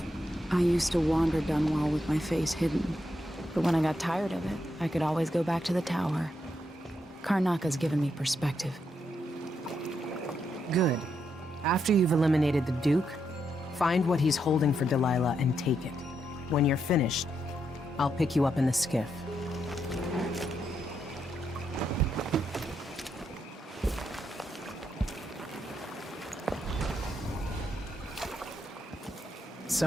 I used to wander Dunwall with my face hidden, but when I got tired of it, I could always go back to the tower. Karnaca's given me perspective. Good. After you've eliminated the Duke, find what he's holding for Delilah and take it. When you're finished, I'll pick you up in the skiff.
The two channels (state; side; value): normal; both; correlation 0.81